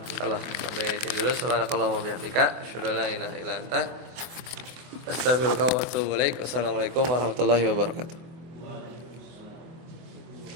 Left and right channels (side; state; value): left; late; 24 ms